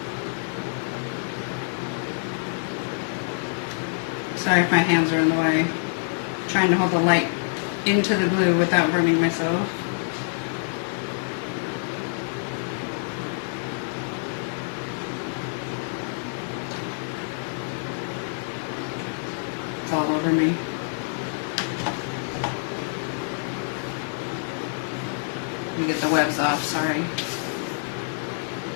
Sorry if my hands are in the way. I'm trying to hold the light into the glue without burning myself. It's all over me. Let me get the webs off, sorry.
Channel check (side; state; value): right; silent; digital silence